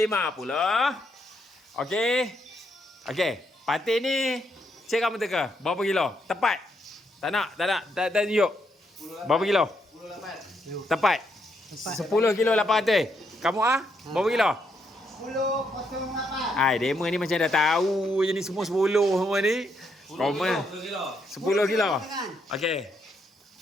Okey. Patin ni cik kamu teka. Berapa kilo? Tepat. Tak nak tunjuk. Berapa kilo? 10 Tepat. 10 kilo 800. Kamu berapa kilo? 10.08. Ai, demo ni macam dah tahu je ni semua 10 semua ni. 10 kilo. Okey.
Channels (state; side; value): normal; both; correlation 0.77